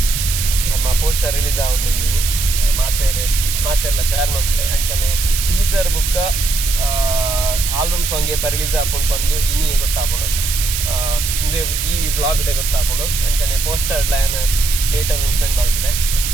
ನಮ್ಮ ಪೋಸ್ಟರ್ ರಿಲೀಸ್ ಆವೊಂದುಂಡಿನಿ ಮಾತೆರ್ಲ ಶೇರ್ ಮನ್ಪ್ಲೆ ಅಂಚನೆ ಟೀಸರ್ ಬುಕ್ಕ ಆಲ್ಬಮ್ ಸಾಂಗ್ ಏಪ ರಿಲೀಸ್ ಆಪುಂಡು ಬಂದು ಇನಿ ಗೊತ್ತಾಪುಂಡು ಮುಂದೆ ಈ ವ್ಲಾಗ್ ಡೇ ಗೊತ್ತಾಪುಂಡು ಅಂಚನೆ ಪೋಸ್ಟರ್ ಲೈನ್ ಡೇಟ್ ಅನೌನ್ಸ್ಮೆಂಟ್ ಮಾಡ್ತದೆ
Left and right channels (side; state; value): right; noise; hiss, 3 dB below the sound